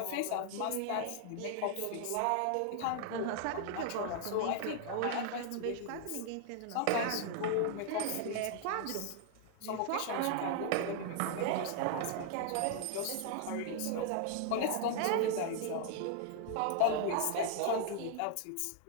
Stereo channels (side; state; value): both; different; correlation 0.00